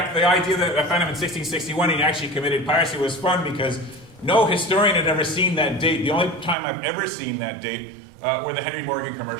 the idea that I found him in 1661 he actually committed piracy was fun because no historian had ever seen that date. The only time I've ever seen that date were the Henry Morgan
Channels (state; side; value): drops out; left; at 6.6 s